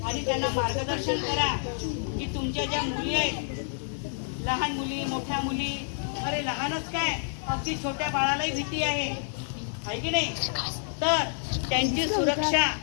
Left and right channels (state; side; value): silent; right; 59 dB below the other